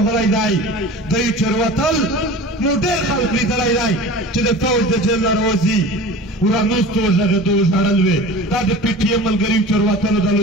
دی دوی چروتل نو ډېر خلک لیدلی دی چې د فوج د جیل نه راوځي ورانوستو وژغېدو ژړل وې دا د پی ټي ایم ملګري چروتلو د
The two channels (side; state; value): both; normal; correlation 0.37